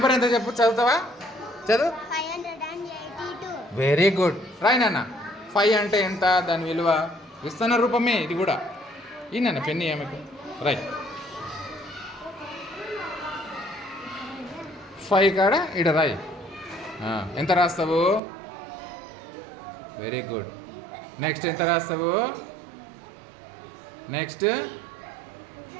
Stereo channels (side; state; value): left; drops out; at 18.2 s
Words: ఎంత చెప్పు చదువుతావా చదువు 582. వెరీ గుడ్ రాయి నాన్న 5 అంటే ఎంత దాని విలువ విస్తరణ రూపమే ఇది కూడా ఈ నాన్న పెన్ని ఏమకు రైట్ 5 కాడ ఇడ రాయి ఎంత రాస్తావు వెరీ గుడ్ నెక్స్ట్ ఎంత రాస్తావు నెక్స్ట్